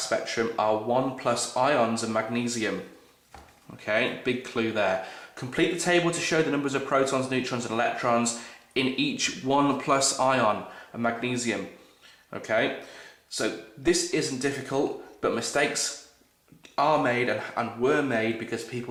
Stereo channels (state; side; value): identical; both; correlation 1.00